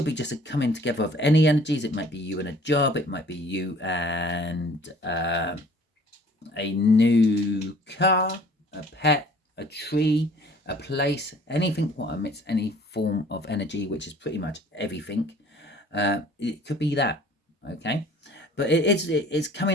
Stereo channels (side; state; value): both; normal; correlation 0.52